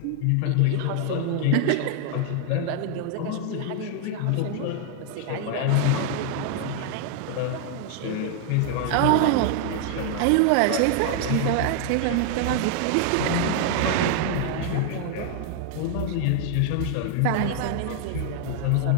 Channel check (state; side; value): different; both; correlation 0.00